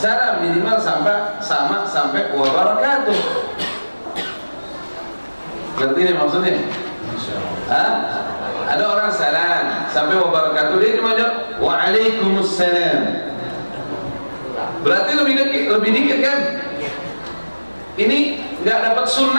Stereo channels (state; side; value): inverted; both; correlation -1.00